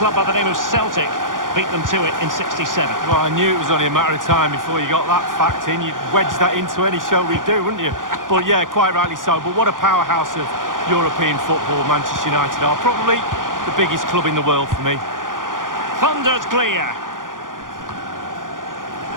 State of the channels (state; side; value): late; left; 0.89 ms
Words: by the name of Celtic beat them to it in 67. Well, I knew it was only a matter of time before you got that fact in. You'd wedge that into any show we do, wouldn't you? But yeah, quite rightly so. But what a powerhouse of European football Manchester United are. Probably the biggest club in the world for me. Thundered clear.